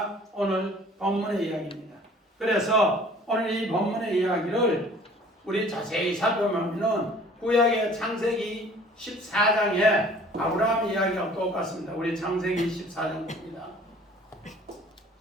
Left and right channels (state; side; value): normal; both; correlation 0.51